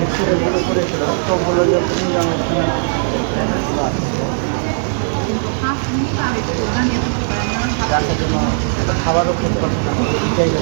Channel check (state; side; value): silent; left; digital silence